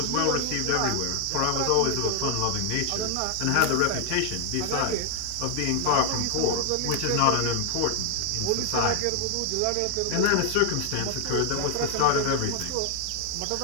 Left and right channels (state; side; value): different; both; correlation 0.00